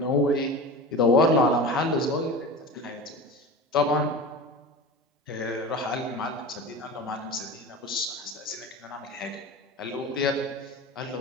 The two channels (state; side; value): normal; both; correlation 0.32